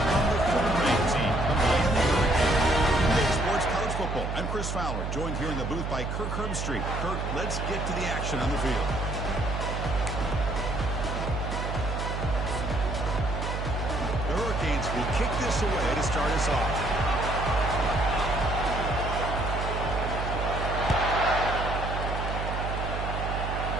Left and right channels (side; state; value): right; noise; hum, 3 dB below the sound